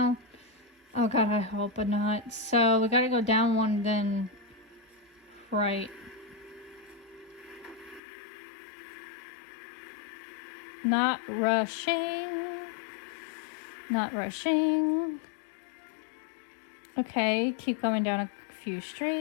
Oh god, I hope not. So we gotta go down one, then right. Not rushing. Not rushing. Okay, keep going down a few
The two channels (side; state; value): right; drops out; at 8.0 s